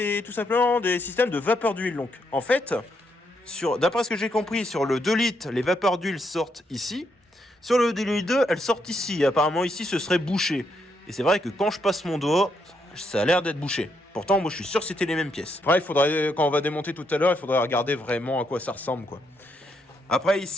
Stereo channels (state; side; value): normal; both; correlation 0.77